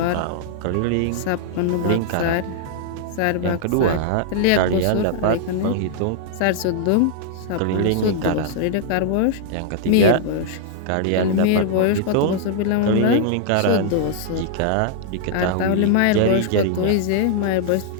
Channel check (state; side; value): different; both; correlation -0.01